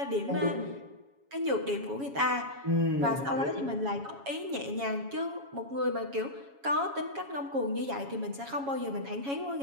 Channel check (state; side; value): late; left; 7.2 ms